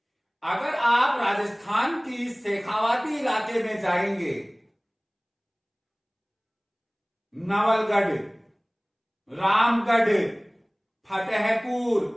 अगर आप राजस्थान की शेखावाटी इलाके में जाएंगे, नवलगढ़, रामगढ़, फतेहपुर,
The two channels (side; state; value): both; identical; correlation 1.00